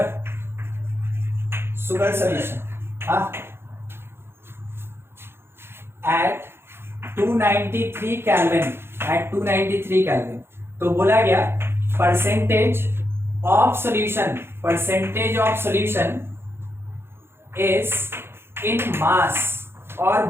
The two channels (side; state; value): left; late; 0.11 ms